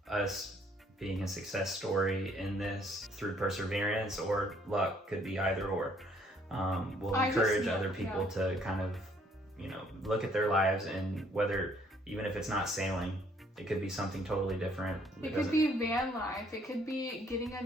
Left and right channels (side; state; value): both; normal; correlation 0.64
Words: us being a success story in this through perseverance or luck, could be either or, will encourage other people to kind of, you know, look at their lives, and whether, even if it's not sailing, it could be something totally different. It could be van life. It could be getting